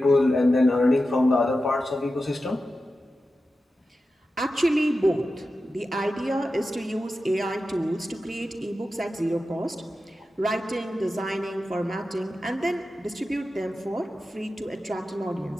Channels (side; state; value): both; normal; correlation 0.92